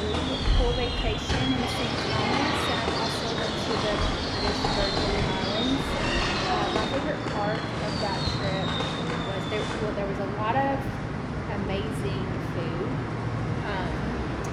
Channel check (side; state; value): both; identical; correlation 1.00